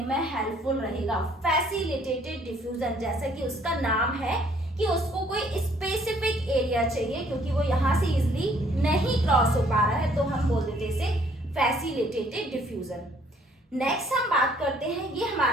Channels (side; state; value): both; normal; correlation 0.62